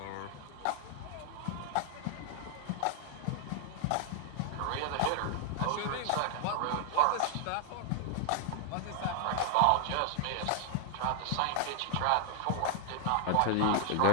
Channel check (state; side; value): different; both; correlation 0.00